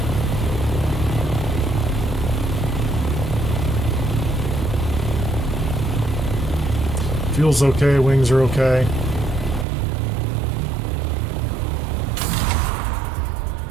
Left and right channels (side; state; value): left; drops out; at 9.7 s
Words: Fuel's okay, wings are okay.